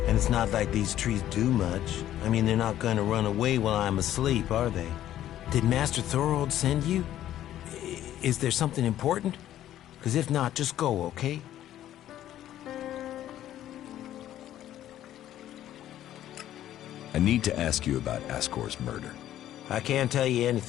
And it's not like these trees do much. I mean, they're not going to run away while I'm asleep, are they? Did Master Thorold send you? Is there something important? Because if not, just go, okay? I need to ask you about Ascor's murder. I can't tell you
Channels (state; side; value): quieter; right; 12.4 dB